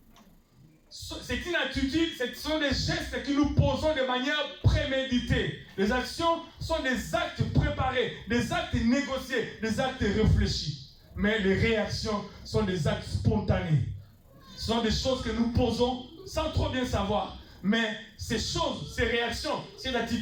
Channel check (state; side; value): identical; both; correlation 1.00